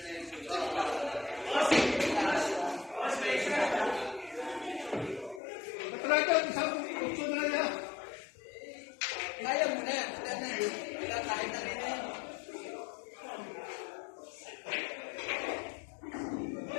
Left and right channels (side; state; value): right; drops out; at 5.4 s